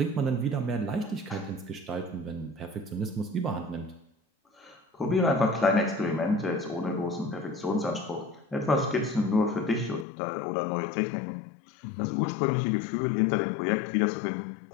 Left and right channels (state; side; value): drops out; right; at 10.1 s